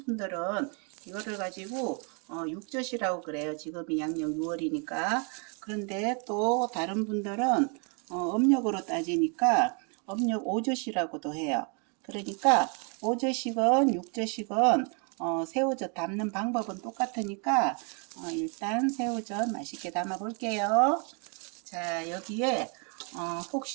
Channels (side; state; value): left; quieter; 37.1 dB